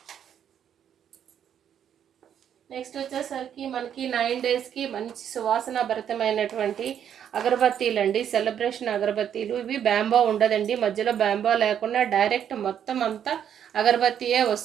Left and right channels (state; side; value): quieter; left; 9.2 dB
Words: నెక్స్ట్ వచ్చేసరికి మనకి 9 daysకి మంచి సువాసన భరితమైనటువంటి అగరబత్తీలు అండి, సెలబ్రేషన్ అగరబత్తీలు. ఇవి బ్యాంబో ఉండదండి, మధ్యలో బ్యాంబో లేకుండా డైరెక్ట్ మొత్తం అంతా అగరబత్తీయే